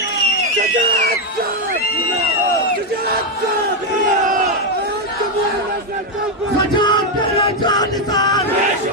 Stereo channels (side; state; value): both; normal; correlation 0.04